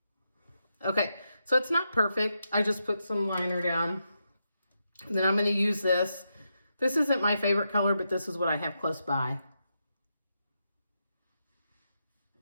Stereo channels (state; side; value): inverted; both; correlation -0.84